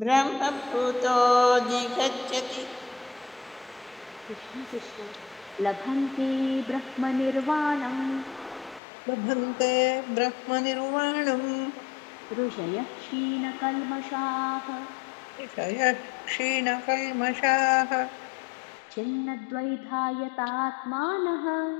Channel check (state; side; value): drops out; right; at 8.8 s